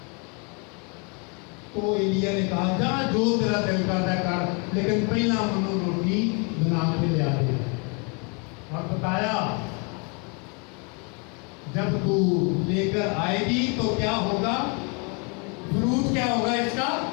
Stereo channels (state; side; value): quieter; right; 34.3 dB